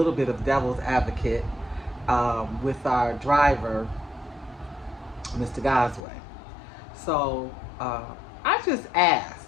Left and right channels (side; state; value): right; drops out; at 6.0 s